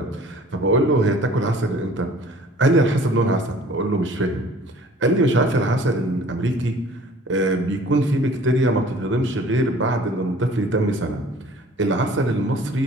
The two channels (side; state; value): both; normal; correlation 0.50